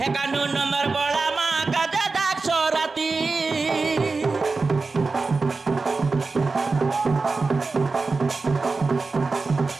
কানু নম্বর বড়া মা কাঁজা ডাকছ রাতি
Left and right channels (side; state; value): left; quieter; 4.0 dB